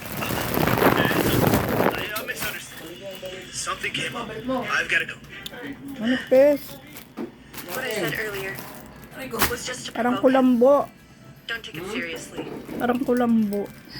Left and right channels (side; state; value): both; identical; correlation 1.00